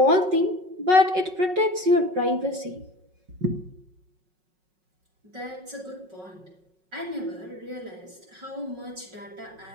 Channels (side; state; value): left; late; 5.4 ms